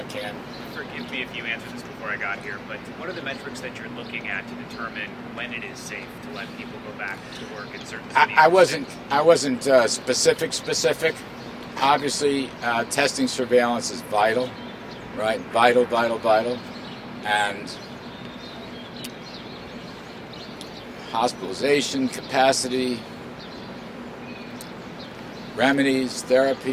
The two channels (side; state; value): both; identical; correlation 1.00